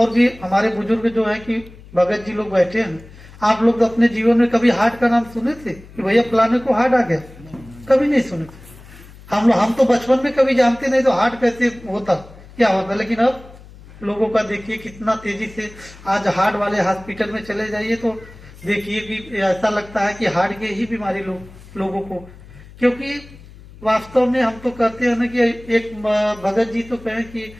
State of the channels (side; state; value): left; noise; hum, 20 dB below the sound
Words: भी हमारे बुजुर्ग जो है कि भगत जी लोग बैठे हैं, आप लोग अपने जीवन में कभी हार्ट का नाम सुने थे कि भैया फलाने को हार्ट आ गया? कभी नहीं सुने थे। हम तो बचपन में कभी जानते नहीं तो हार्ट कैसे होता, क्या होता। लेकिन अब लोगों का देखिए कितना तेजी से, आज हार्ट वाले हॉस्पिटल में चले जाइए तो देखिए कि ऐसा लगता है कि हार्ट की ही बीमारी लोगों को, क्योंकि वास्तव में हम तो कहते हैं ना कि एक भगत जी तो कहें कि